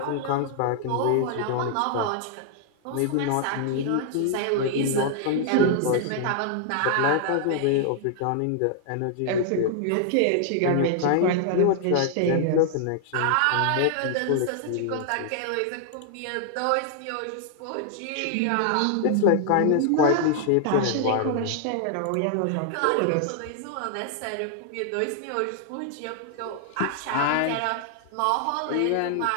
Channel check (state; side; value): different; both; correlation 0.00